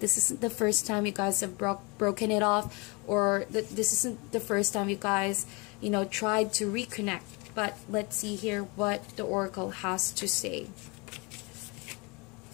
isn't the first time you guys have broken it off, or this isn't the first time you guys, you know, tried to reconnect. But let's see here what the oracle has to say.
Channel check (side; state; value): right; quieter; 28.7 dB